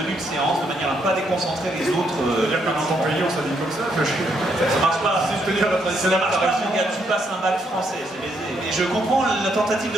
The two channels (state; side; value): normal; both; correlation 0.75